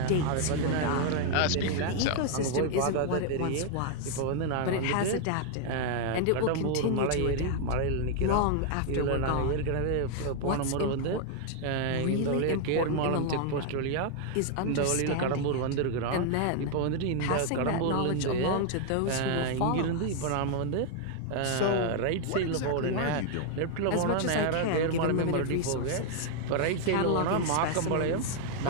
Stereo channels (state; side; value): different; both; correlation 0.00